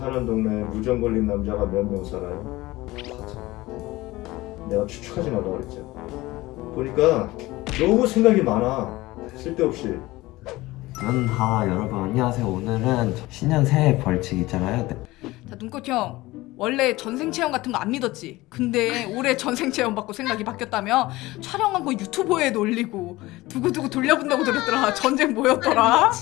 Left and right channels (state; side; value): quieter; right; 19.2 dB